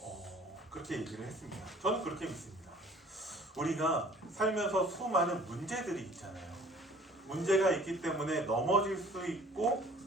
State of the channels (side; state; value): both; normal; correlation 0.52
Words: 그렇게 얘기를 했습니다. 저는 그렇게 믿습니다. 우리가 살면서 수많은 문제들이 있잖아요. 문제가 있기 때문에 넘어질 수 있고